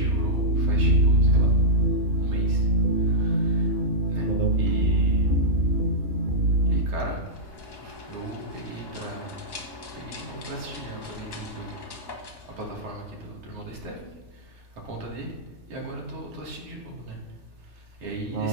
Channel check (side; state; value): left; late; 3.3 ms